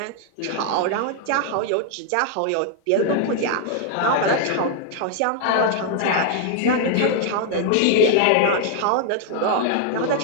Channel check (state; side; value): different; both; correlation 0.00